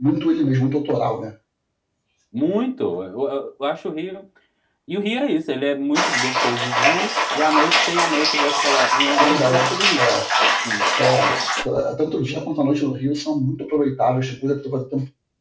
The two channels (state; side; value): identical; both; correlation 1.00